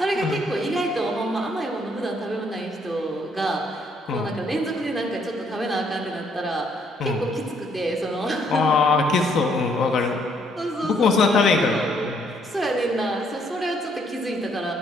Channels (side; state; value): both; normal; correlation 0.68